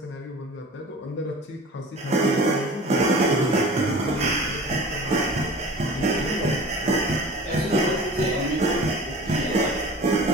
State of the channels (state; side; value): normal; both; correlation 0.41